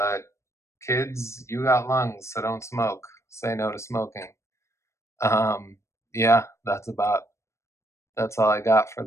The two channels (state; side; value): late; right; 0.14 ms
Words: kids, you got lungs, so don't smoke. Say no to smoking. Um, yeah, that's all I got for